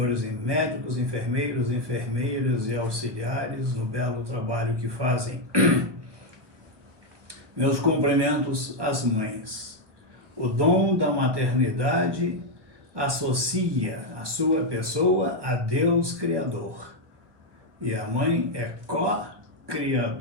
médicos, enfermeiros, enfermeiras e auxiliares no belo trabalho que fazem. Meus cumprimentos às mães. O dom da maternidade associa a sua pessoa a Deus Criador. E a mãe é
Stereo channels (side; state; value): left; late; 1.5 ms